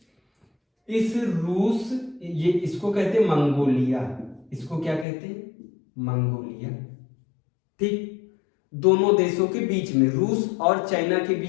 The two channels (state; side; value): drops out; right; at 5.1 s